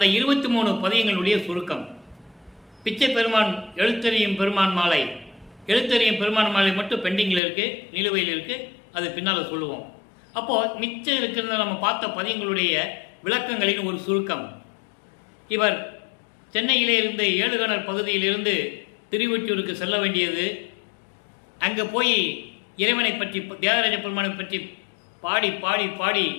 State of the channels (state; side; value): drops out; right; at 7.4 s